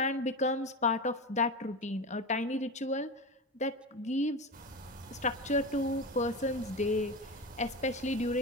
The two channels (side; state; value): both; normal; correlation 0.23